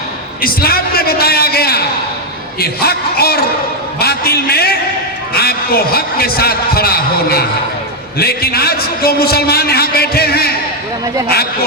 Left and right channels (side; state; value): both; normal; correlation 0.02